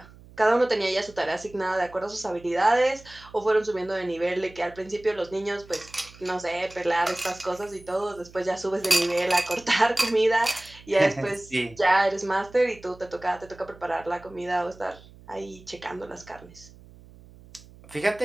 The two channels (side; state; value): right; noise; hum, 22 dB below the sound